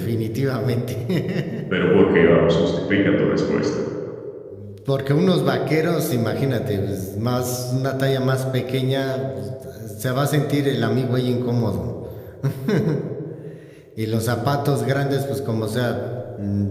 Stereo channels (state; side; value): identical; both; correlation 1.00